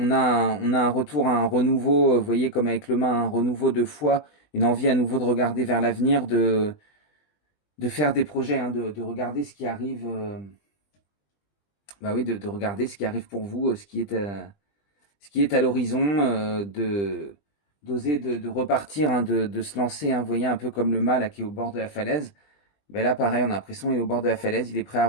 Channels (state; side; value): late; right; 20 ms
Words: a un retour à un renouveau, vous voyez, comme avec le main, un renouveau de foi, une envie à nouveau de regarder vers l'avenir, de faire des projets, hein, de regarder ce qui arrive, bah oui, de regarder ce qui arrive pour vous, ce qui est à l'horizon, d'oser de repartir, hein, de se lancer, hein, vous voyez, un peu comme le mât là, qui est au bord de la falaise. Ben là, pareil, on a l'impression qu'il est au bord de la falaise, il est prêt à